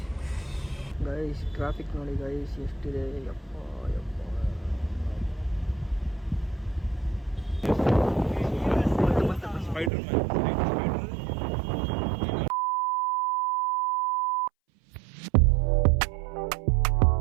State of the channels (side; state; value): left; drops out; at 9.9 s